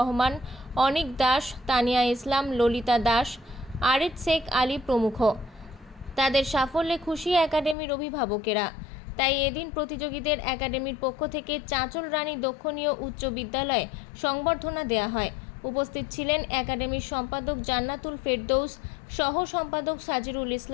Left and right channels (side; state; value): right; drops out; at 7.8 s